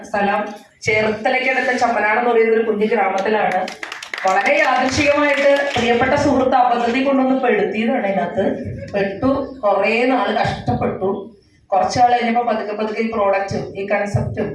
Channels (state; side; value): identical; both; correlation 1.00